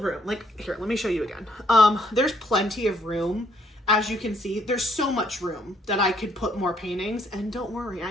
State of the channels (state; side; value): normal; both; correlation 0.69